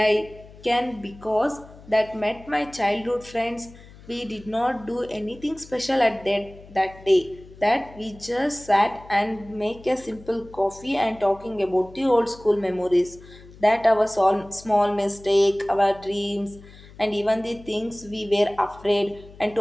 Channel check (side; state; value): left; noise; hum, 21 dB below the sound